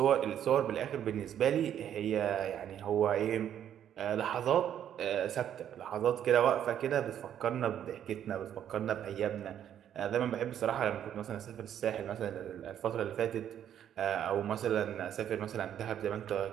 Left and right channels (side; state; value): left; quieter; 10.0 dB